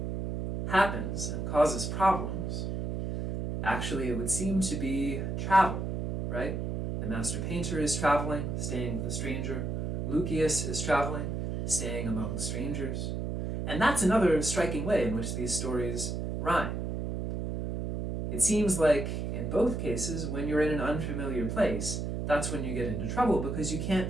happens and causes problems, actually it would seem to be travel, right? The master painter is traveling, staying with a stranger. Lucius is traveling, staying among strangers. And that's another striking way in which these stories rhyme. It seems like, in both cases, when you're in an unfamiliar place, that's when you get into trouble because you can't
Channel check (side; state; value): right; noise; hum, 2 dB below the sound